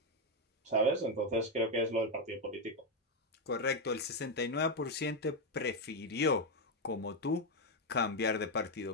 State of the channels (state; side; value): normal; both; correlation 0.03